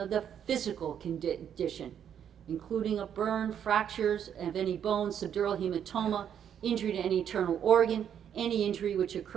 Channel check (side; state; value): left; quieter; 9.0 dB